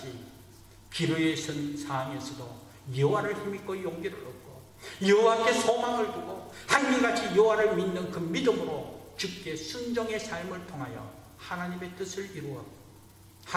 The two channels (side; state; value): both; identical; correlation 1.00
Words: 기로에 선 상황에서도 여호와를 힘입고 용기를 얻고 여호와께 소망을 두고 한결같이 여호와를 믿는 그 믿음으로 주께 순종의 삶을 통하여 하나님의 뜻을 이루어